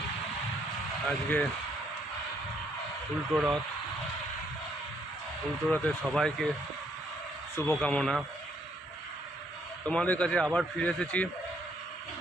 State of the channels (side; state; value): both; normal; correlation 0.70